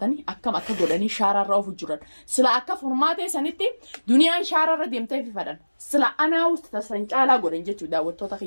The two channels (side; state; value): both; inverted; correlation -1.00